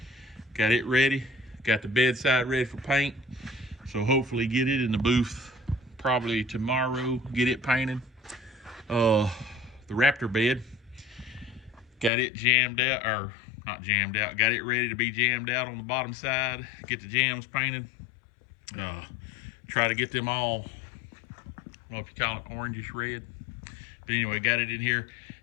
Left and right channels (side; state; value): right; drops out; at 12.1 s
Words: Got it ready. Got the bedside ready for paint. So hopefully get it in the booth probably tomorrow, get it painted. The Raptor bed, got it jammed out, or not jammed out, got it ready to be jammed out on the bottom side, get the jams painted. Try to get them all, I don't know if you call it orangish red. But anyway, got it in here.